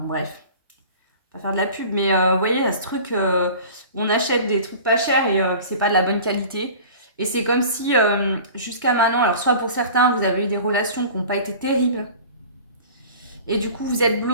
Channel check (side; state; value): both; inverted; correlation -0.41